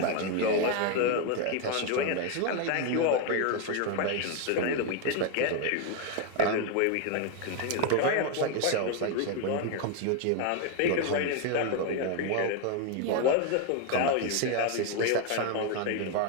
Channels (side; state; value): both; different; correlation 0.01